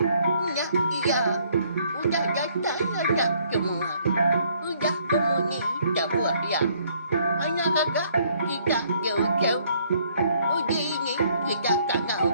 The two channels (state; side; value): inverted; both; correlation -0.65